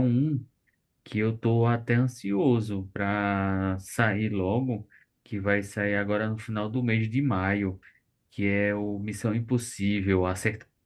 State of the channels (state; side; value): identical; both; correlation 1.00